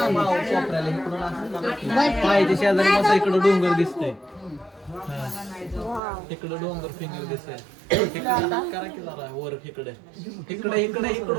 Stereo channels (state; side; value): drops out; left; at 6.0 s